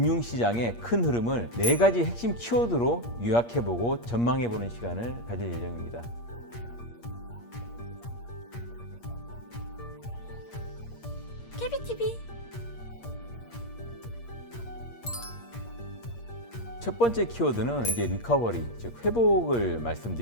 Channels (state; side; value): late; right; 8.5 ms